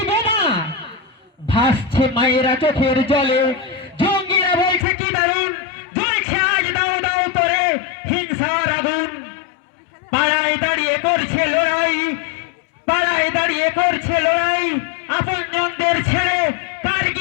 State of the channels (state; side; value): drops out; right; at 4.9 s